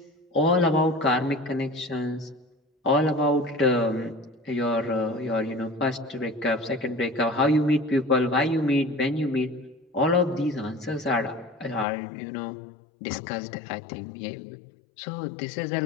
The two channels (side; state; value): right; drops out; at 11.9 s